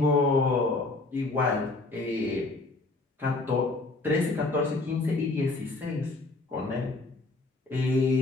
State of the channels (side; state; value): right; quieter; 3.2 dB